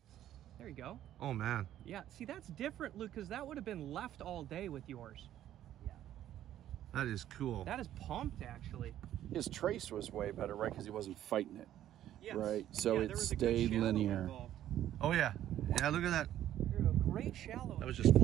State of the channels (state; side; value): quieter; left; 12.0 dB